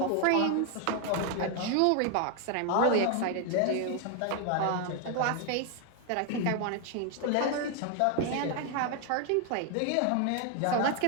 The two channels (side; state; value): both; different; correlation 0.01